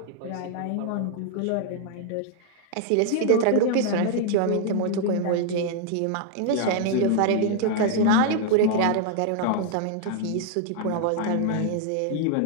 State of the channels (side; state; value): both; different; correlation 0.00